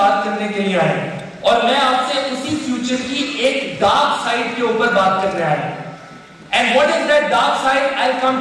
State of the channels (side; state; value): both; identical; correlation 1.00